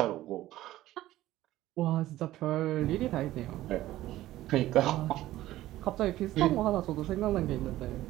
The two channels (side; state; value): left; quieter; 15.2 dB